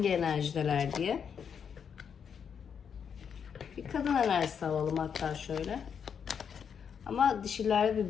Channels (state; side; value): quieter; right; 7.2 dB